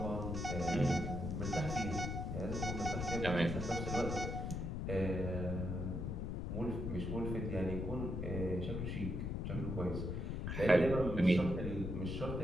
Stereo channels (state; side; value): noise; left; rumble, 2 dB below the sound